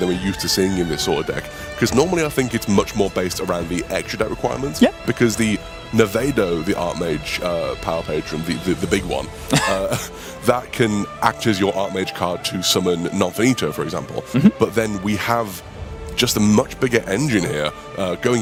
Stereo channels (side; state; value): both; identical; correlation 1.00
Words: we're used to seeing in this sort of deck. Because normally I think it's much more based around the extra deck requirements. Yeah. Because the Nevedo, the Archmage Power Patron, the big one, that can act as your Archmage card to summon Nonfinito, for example. But then we have just a much bigger engine here, going